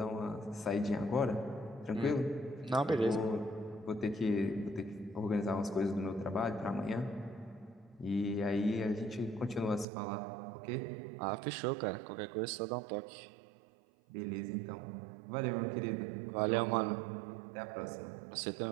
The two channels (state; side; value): drops out; left; at 9.9 s